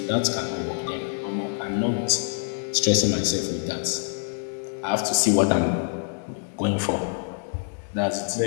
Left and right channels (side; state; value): right; silent; 61 dB below the other